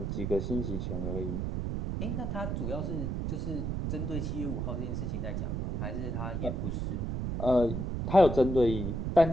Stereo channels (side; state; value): right; noise; rumble, 2 dB below the sound